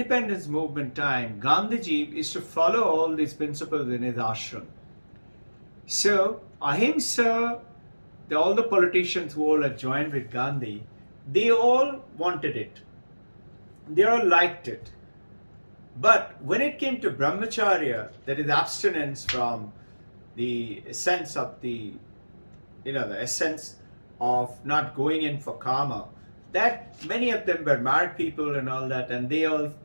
movement time, Gandhiji is to follow all these principles in his ashram. So, ahimsa, all the politicians who all had joined with Gandhi, they all wanted it. They all liked it. But when it came to brahmacharya, that is abstinence from the essence of the essence of not going in for karma, that many of them were married people and all that, and they all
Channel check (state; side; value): inverted; both; correlation -1.00